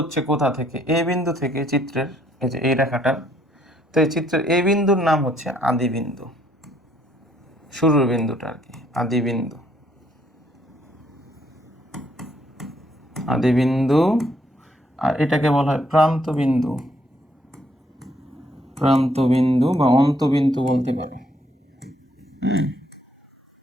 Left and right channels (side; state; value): both; normal; correlation 0.69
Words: কোথা থেকে, এ বিন্দু থেকে চিত্রের, এই যে এই রেখাটা। তো এই চিত্রের এ বিন্দুর নাম হচ্ছে আদি বিন্দু, শুরুর বিন্দুটা আর কি, আদি বিন্দু, আদি বিন্দু। আর এটাকে বলা হয় প্রান্ত বিন্দু, প্রান্ত বিন্দু বা অন্তবিন্দু বলতে পারে।